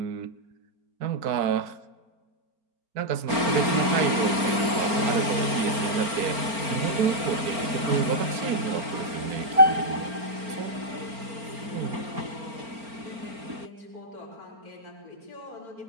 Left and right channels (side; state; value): left; late; 4.4 ms